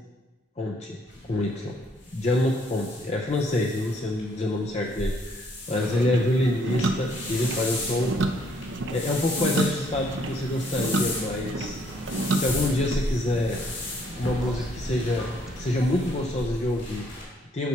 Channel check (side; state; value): both; normal; correlation 0.66